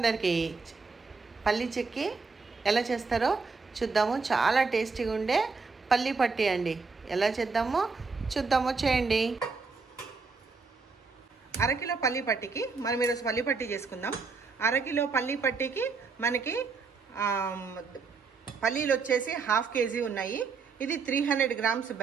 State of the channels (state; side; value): quieter; left; 4.6 dB